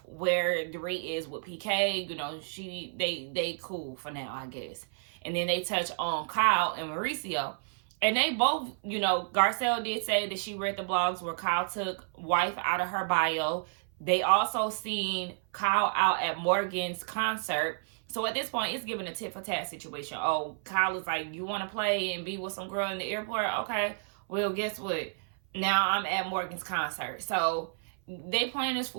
where Dorit is with PK. You know, they cool for now, I guess. And then they touch on Kyle and Mauricio. And they both, you know, Garcel did say that she read the blogs where Kyle took wife out of her bio. They also seen Kyle out at Morgan's concert. So at this point, it's giving a tit for tat situation. Oh, Kyle is like, you want to play and be with some girl in the airport? Okay, well, guess what? Now I'm at Morgan's concert. So they playing this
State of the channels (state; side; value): silent; left; 57 dB below the other